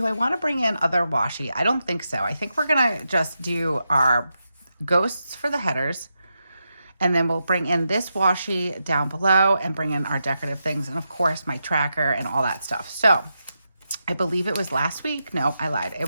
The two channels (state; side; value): inverted; both; correlation -0.87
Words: I want to bring in other washi? I don't think so. I think we're going to just do our ghosts for the headers. And then we'll bring in this washi down below and bring in our decorative things. And of course, my tracker and all that stuff. So I believe it was last week. No, I lied. It